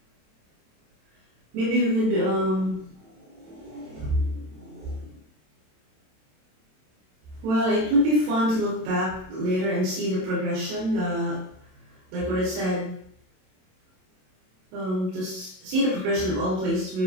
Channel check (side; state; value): left; late; 27 ms